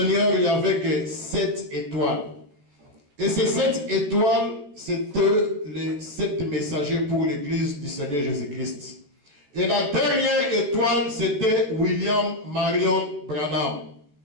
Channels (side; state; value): left; late; 14 ms